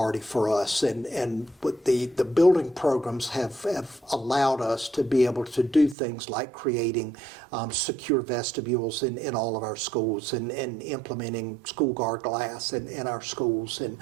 for us, and what the building programs have allowed us to be able to do things like creating secure vestibules in all of our schools and implementing school guard glass in our schools, and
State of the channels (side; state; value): left; drops out; at 6.0 s